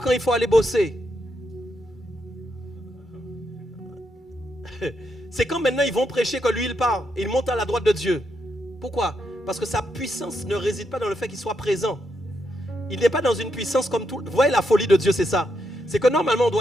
il faut aller bosser. C'est quand maintenant ils vont prêcher que lui il part et il monte à la droite de Dieu. Pourquoi? Parce que sa puissance ne réside pas dans le fait qu'il soit présent. Il n'est pas dans une puissance comme tout. Vous voyez la folie de Dieu, c'est ça. C'est que normalement on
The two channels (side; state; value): both; normal; correlation 0.81